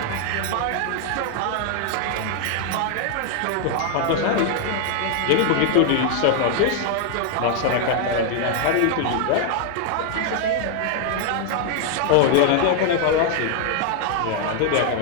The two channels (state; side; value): different; both; correlation 0.00